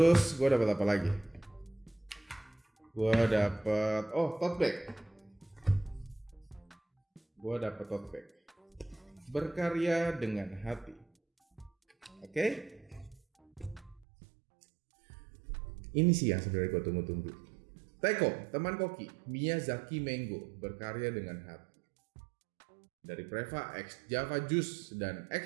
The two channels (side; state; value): left; drops out; at 14.1 s